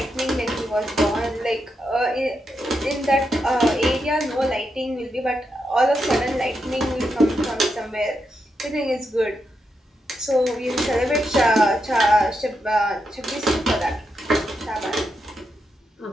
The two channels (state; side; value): normal; both; correlation 0.84